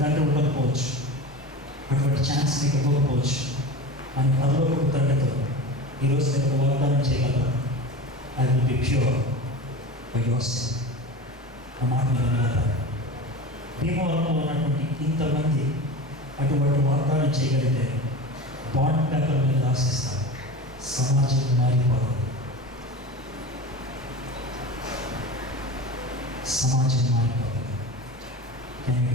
తండ్రి ఉండకపోవచ్చు, అటువంటి ఛాన్స్ మీకు ఇవ్వకపోవచ్చు. అని పరలోకపు తండ్రితో ఈరోజు నేను వాగ్దానం చేయగలను. I will be pure by your self. ఆ మాట మీద భీమవరంలో ఉన్నటువంటి ఇంతమంది అటువంటి వాగ్దానం చేయగలిగితే బాండ్ పేపర్ మీద రాసిస్తారు. సమాజం మారిపోతుంది. Can you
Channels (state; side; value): normal; both; correlation 0.31